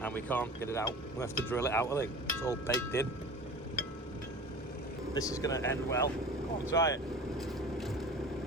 and we can't get it out. We have to drill it out, I think. It's all baked in. This is going to end well. Come on, try it.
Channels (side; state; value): both; normal; correlation 0.37